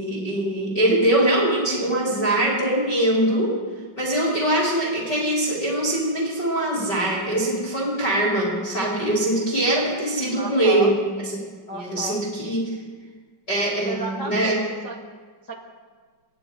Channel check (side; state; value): right; late; 5.4 ms